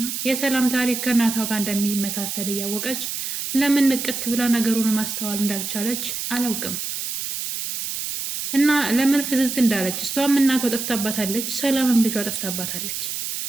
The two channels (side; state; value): right; noise; hiss, 4 dB below the sound